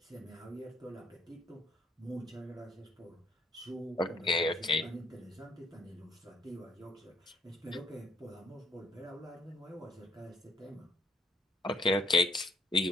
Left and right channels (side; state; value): both; normal; correlation 0.63